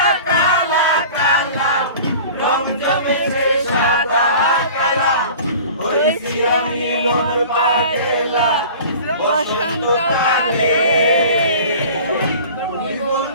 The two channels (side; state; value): both; inverted; correlation -0.42